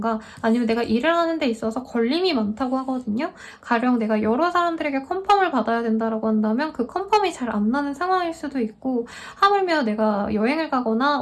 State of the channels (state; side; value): identical; both; correlation 1.00